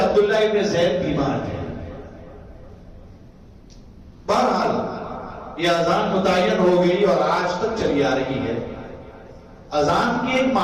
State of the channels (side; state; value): both; identical; correlation 1.00